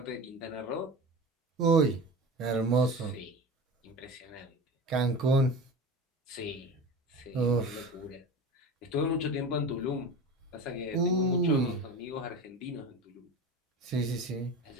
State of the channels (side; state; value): both; normal; correlation 0.32